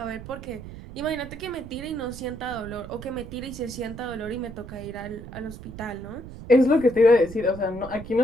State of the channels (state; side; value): noise; right; rumble, 13 dB below the sound